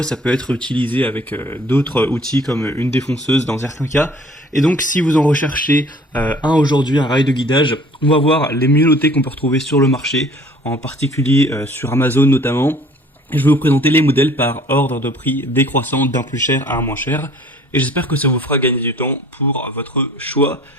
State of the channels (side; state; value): both; normal; correlation 0.52